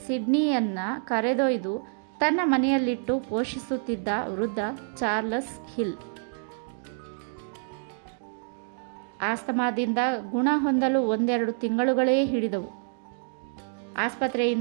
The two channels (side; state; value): left; silent; digital silence